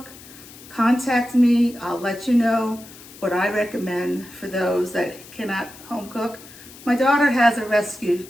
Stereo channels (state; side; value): noise; left; hiss, 19 dB below the sound